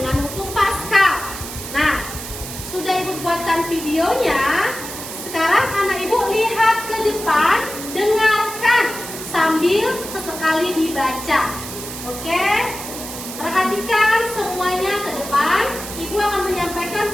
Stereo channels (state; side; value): noise; right; hiss, 9 dB below the sound